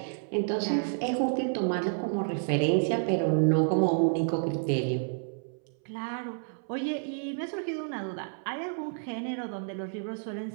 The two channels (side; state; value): left; silent; 58 dB below the other